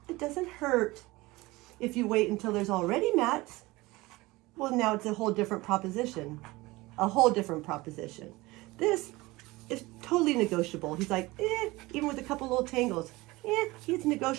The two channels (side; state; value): left; quieter; 21.0 dB